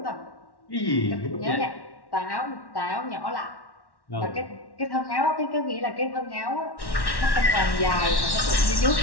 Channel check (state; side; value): late; right; 1.1 ms